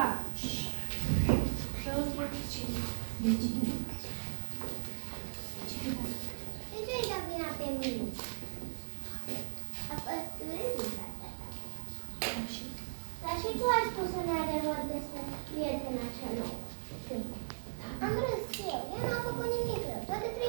De ce îi dau vina pe mine? A păsturit Dar și tu ai spus un adevăr despre prietena cea nouă. Am râs eu. Ea n-a făcut nimic rău. Toate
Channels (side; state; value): left; silent; 53 dB below the other